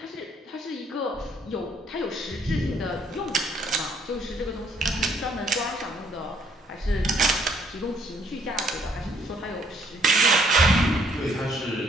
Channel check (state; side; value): normal; both; correlation 0.66